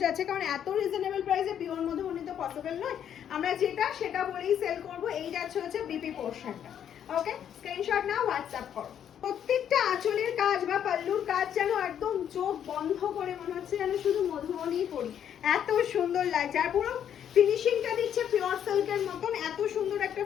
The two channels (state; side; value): quieter; right; 9.3 dB